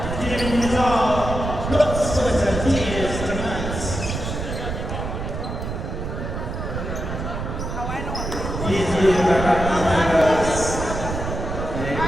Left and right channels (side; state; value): right; noise; rumble, 5 dB below the sound